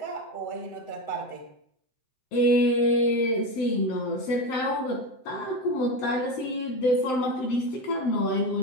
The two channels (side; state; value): right; late; 7.8 ms